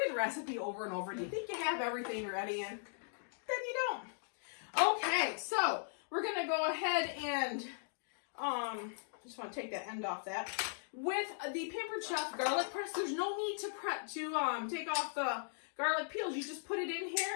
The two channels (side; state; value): right; silent; digital silence